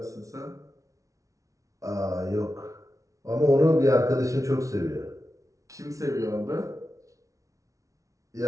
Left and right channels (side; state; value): left; late; 0.16 ms